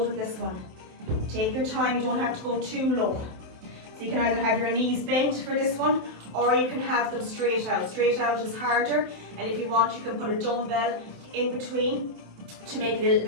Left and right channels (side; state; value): left; late; 27 ms